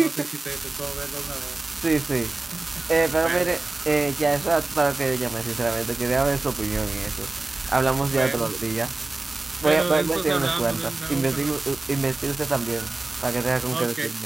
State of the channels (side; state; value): left; quieter; 3.2 dB